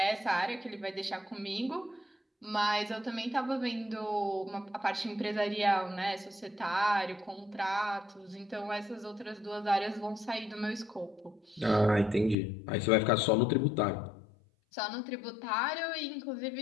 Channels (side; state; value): right; drops out; at 12.4 s